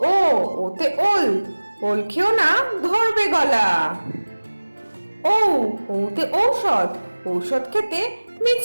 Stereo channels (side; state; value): both; inverted; correlation -1.00